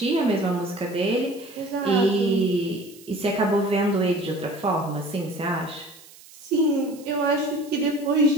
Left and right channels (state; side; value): noise; right; hiss, 22 dB below the sound